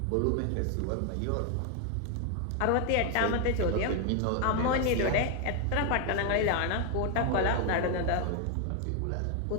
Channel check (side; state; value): both; different; correlation 0.01